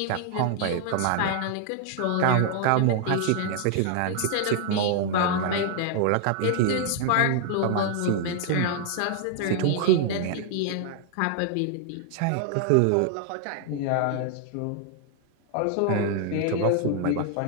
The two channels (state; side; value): different; both; correlation 0.00